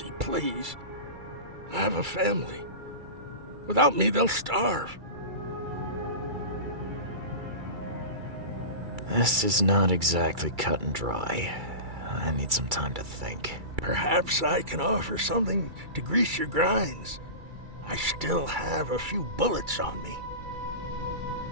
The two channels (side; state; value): left; late; 2.3 ms